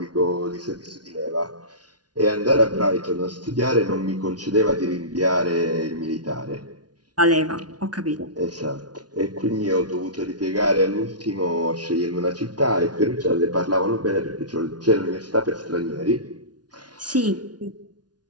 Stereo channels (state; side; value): late; left; 0.69 ms